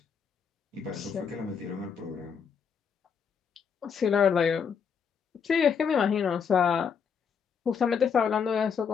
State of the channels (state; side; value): quieter; right; 6.7 dB